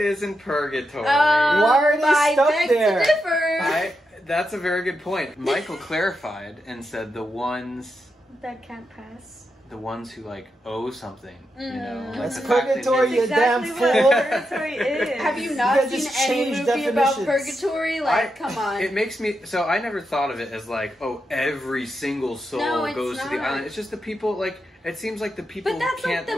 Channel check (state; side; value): normal; both; correlation 0.85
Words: in purgatory. Why are they I stuck beg there? to differ. That's a very good point. Michael clarified and said the ones That can't pass. who like owe something, you know. Like That's the fact they purgatory, made- you damn Exactly fool. what purgatory is. Have you You not guys seen just any changed movie about definitions. purgatory? Like, come on. It makes me so I never thought of it as like, oh, every single soul No, it's goes to the not. island. It's just the people like it seems like the people But that's can't like